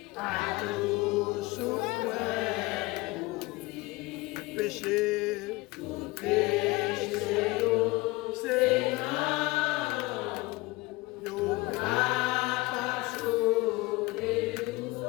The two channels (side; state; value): right; quieter; 22.0 dB